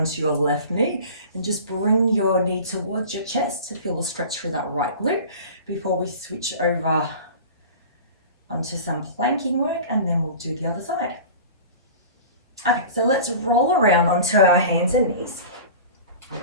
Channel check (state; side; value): inverted; both; correlation -0.38